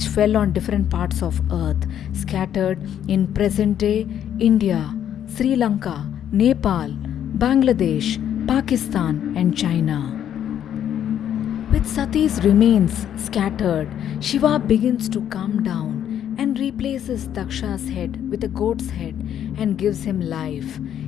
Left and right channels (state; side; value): quieter; right; 10.0 dB